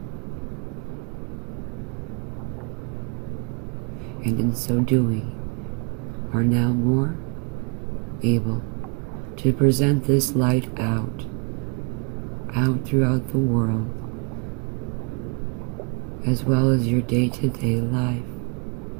and in so doing are now more able to present this light out throughout the world, as well as your day-to-day life.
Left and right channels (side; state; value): left; quieter; 33.0 dB